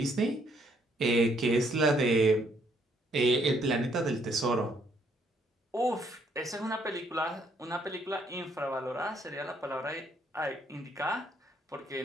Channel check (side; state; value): both; normal; correlation 0.69